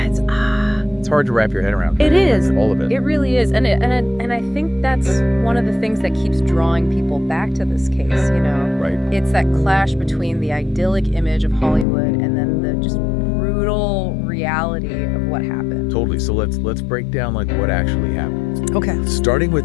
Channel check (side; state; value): right; drops out; at 11.9 s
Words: It's hard to wrap your head around. It is. All of it. It really is. And I think that's one of the things that keeps drawing people back to this case, you know? Right. It's that clash between the idyllic image of Hollywood and then the just brutal reality of what happened. Totally. So let's break down like what actually happened. Okay. Starting with